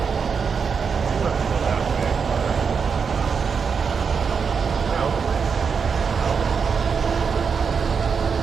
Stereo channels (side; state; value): left; quieter; 5.9 dB